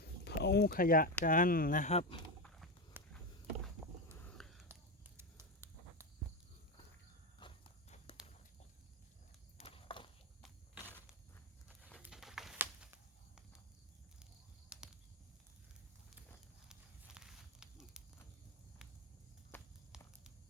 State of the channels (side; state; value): both; normal; correlation 0.14